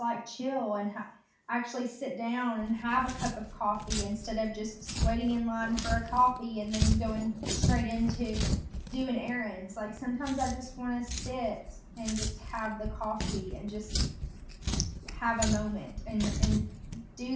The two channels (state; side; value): identical; both; correlation 1.00